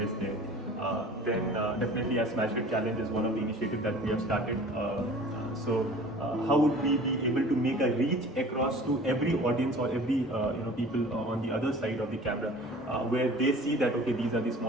there? Then definitely as SmasHit Challenge is one of the initiatives that we have started. How would we be able to make a reach across to every audience or every people on the other side of the camera, where they see that okay, these are the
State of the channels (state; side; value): normal; both; correlation 0.45